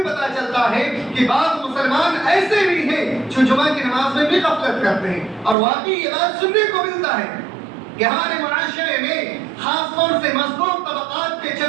پتا چلتا ہے کہ بعض مسلمان ایسے بھی ہیں جو جمعہ کی نماز میں بھی غفلت کرتے ہیں، اور واقعی یہ بات سننے کو ملتا ہے کہ ہمارے معاشرے میں خاص طور سے مزدور طبقات کے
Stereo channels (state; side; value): drops out; left; at 5.6 s